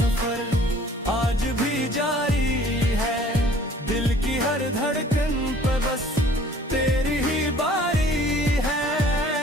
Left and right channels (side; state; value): both; normal; correlation 0.53